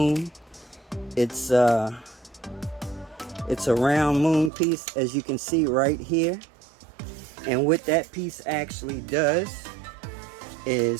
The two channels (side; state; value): left; drops out; at 4.5 s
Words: It's a round moon piece, as you can see right here. And what that piece actually does